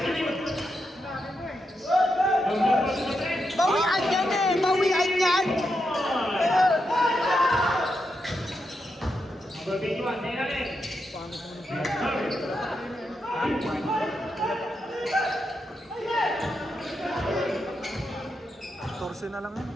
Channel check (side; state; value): both; normal; correlation 0.84